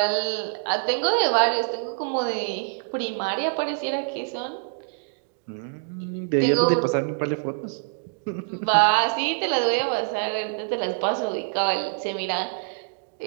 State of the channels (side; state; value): left; silent; digital silence